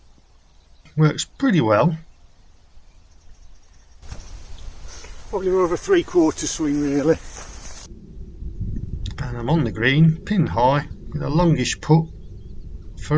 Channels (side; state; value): both; identical; correlation 1.00